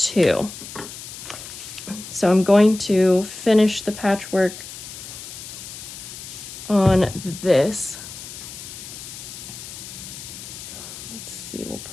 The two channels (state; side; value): noise; left; hiss, 12 dB below the sound